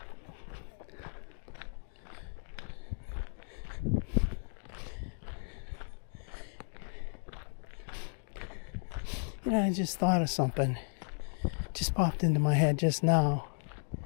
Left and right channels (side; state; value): right; silent; 55 dB below the other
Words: You know, I just thought of something. Just popped into my head just now.